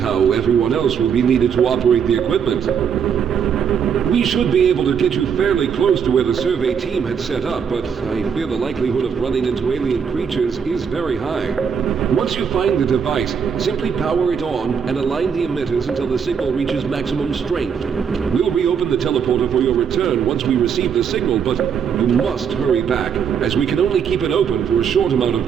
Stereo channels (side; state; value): left; quieter; 7.1 dB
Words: everyone else will be needed to operate the equipment. We should be able to get you fairly close to where the survey team had set up, but I fear the likelihood of running into alien creatures is very high. Once you find the device, simply power it on and align the emitters until the signal reaches maximum strength. We'll reopen the teleporter for your return once we receive the signal, but you must hurry back, as we can only keep it open for a short amount of